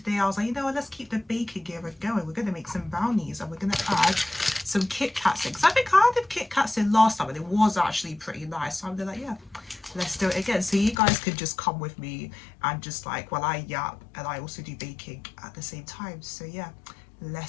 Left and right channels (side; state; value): right; drops out; at 11.0 s